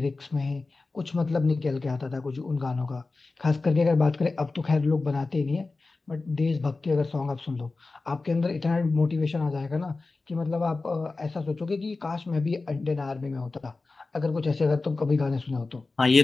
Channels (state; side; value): quieter; right; 3.6 dB